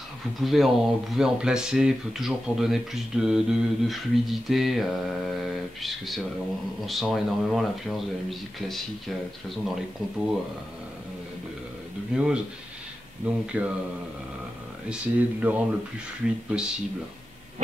vous pouvez en placer toujours pour donner plus de fluidité, puisque on sent énormément l'influence de la musique classique, de toute façon dans les compos de Muse. Donc essayez de le rendre le plus fluide possible.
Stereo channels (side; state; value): both; normal; correlation 0.91